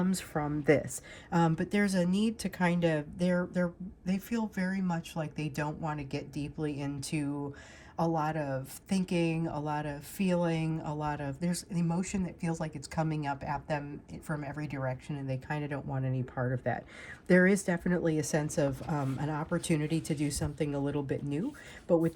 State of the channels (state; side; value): identical; both; correlation 1.00